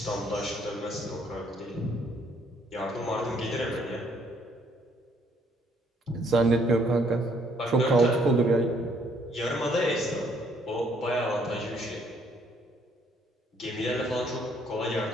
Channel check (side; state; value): both; normal; correlation 0.66